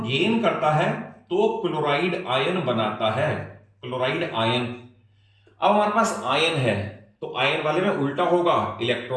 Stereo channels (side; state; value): both; identical; correlation 1.00